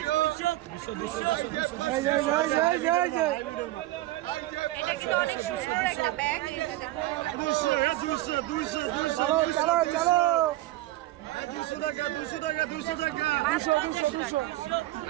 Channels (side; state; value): left; quieter; 16.8 dB